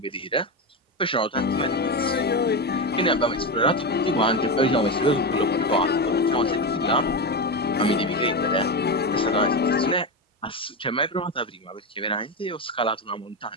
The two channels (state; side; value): normal; both; correlation 0.15